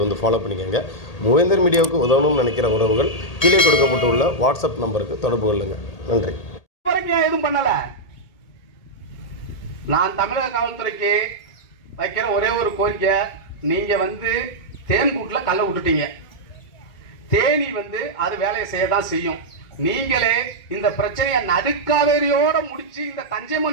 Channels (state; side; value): late; right; 1.8 ms